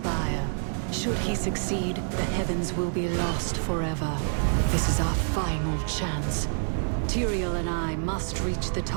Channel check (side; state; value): left; silent; 60 dB below the other